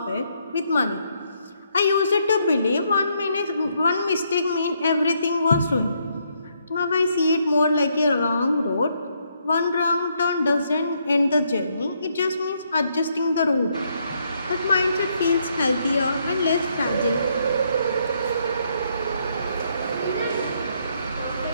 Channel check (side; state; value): both; inverted; correlation -0.74